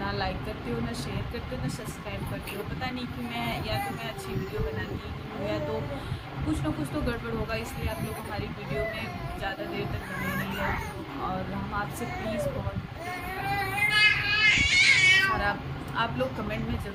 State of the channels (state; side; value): identical; both; correlation 1.00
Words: लाइक करते हो, ना शेयर करते हो, ना सब्सक्राइब करते हो। पता नहीं कि मैं अच्छी वीडियो बनाती हूँ या तो कुछ ना कुछ तो गड़बड़ होगा, इसलिए आप लोग हमारी वीडियो में ज़्यादा देर तक बने नहीं रहते। और हम आपसे प्लीज़ बहुत सारा आप लोग कमेंट में